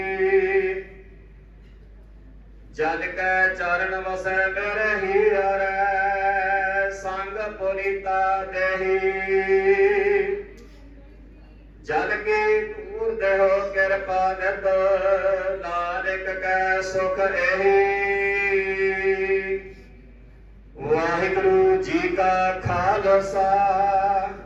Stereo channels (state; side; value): identical; both; correlation 1.00